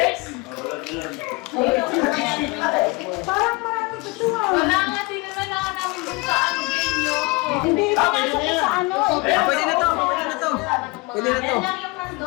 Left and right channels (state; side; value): quieter; right; 26.6 dB